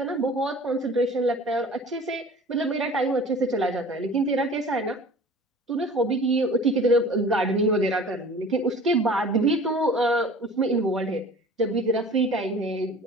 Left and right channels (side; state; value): both; normal; correlation 0.43